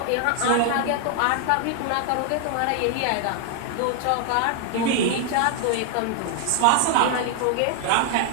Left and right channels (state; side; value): different; both; correlation 0.00